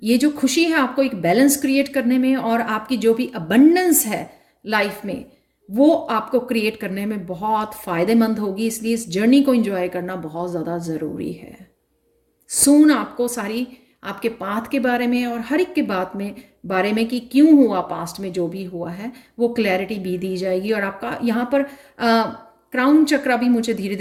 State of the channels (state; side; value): identical; both; correlation 1.00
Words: ये जो खुशी है आपको एक बैलेंस क्रिएट करने में, और आपकी जो भी अबंडेंस है लाइफ में, वो आपको क्रिएट करने में बहुत फ़ायदेमंद होगी। इसलिए इस जर्नी को इंजॉय करना बहुत ज़्यादा ज़रूरी है। सून आपको सारी आपके पाथ के बारे में और हर एक के बारे में कि क्यों हुआ, पास्ट में जो भी हुआ है वो क्लैरिटी भी दी जाएगी। और आपका यहाँ पर क्राउन चक्रा भी मुझे धीरे